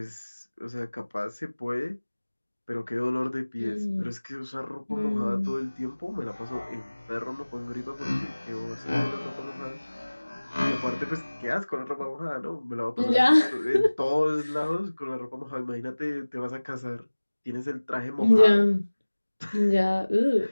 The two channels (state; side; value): inverted; both; correlation -1.00